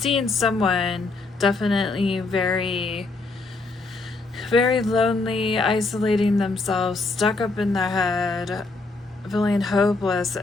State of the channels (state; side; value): quieter; right; 3.5 dB